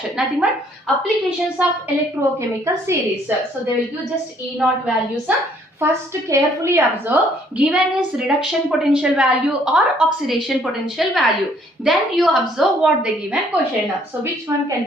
Nothing but applications of electrochemical series. So they will give just E naught values. First carefully observe given is reduction potential value or oxidation potential value. Then you observe what the given question. So which one can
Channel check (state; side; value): normal; both; correlation 0.63